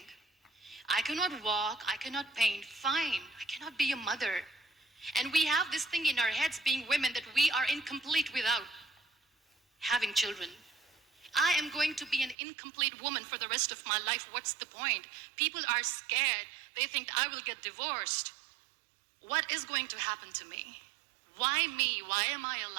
I cannot walk, I cannot paint, fine. I cannot be a mother. And we have this thing in our heads, being women, that we are incomplete without having children. I am going to be an incomplete woman for the rest of my life. What's the point? People are scared. They think I will get divorced. What is going to happen to me? Why me? Why am I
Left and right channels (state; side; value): drops out; left; at 12.4 s